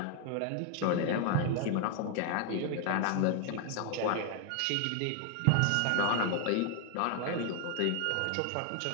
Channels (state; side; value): different; both; correlation 0.00